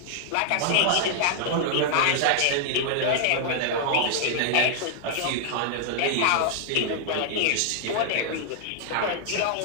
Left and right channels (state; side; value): different; both; correlation -0.01